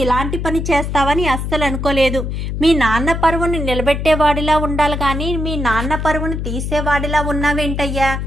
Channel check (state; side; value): noise; left; hum, 3 dB below the sound